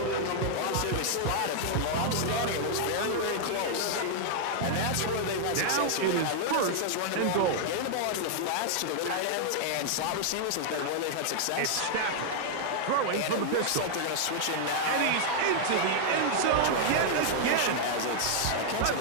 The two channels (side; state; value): both; different; correlation -0.01